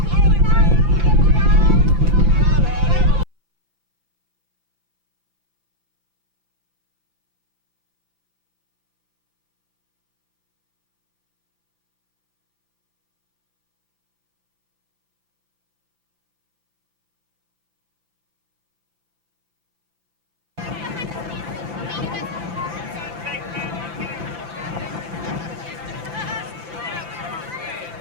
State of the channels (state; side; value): late; left; 5.9 ms